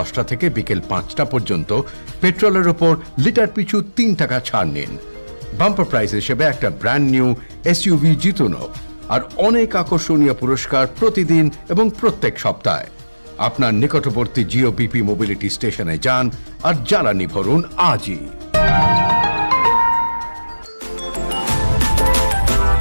থেকে বিকেল 5টা পর্যন্ত পেট্রোলের ওপর লিটার পিছু 3 টাকা ছাড় নিন। বাম্পার প্রাইজ হিসেবে একটা ব্র্যান্ড নিউ এসইউভি জিতুন আর অনেক আকর্ষণীয় পুরস্কার প্রতিদিন এবং প্রত্যেক সপ্তাহে। আপনার নিকটবর্তী জিওপিপি মোবিলিটি স্টেশনে যান আর জ্বালানি ভরুন আজই।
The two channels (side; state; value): both; inverted; correlation -1.00